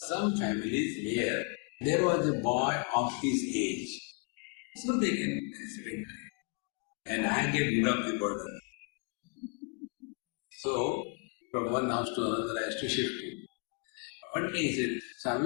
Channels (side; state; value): right; quieter; 32.4 dB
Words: families where there was a boy of his age. So they can spend time. And I get rid of the burden. So from one house to another I used to shift him. One day he said,